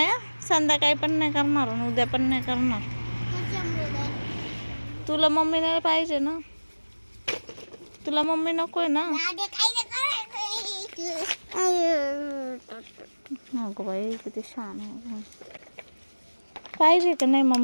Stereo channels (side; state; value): both; inverted; correlation -1.00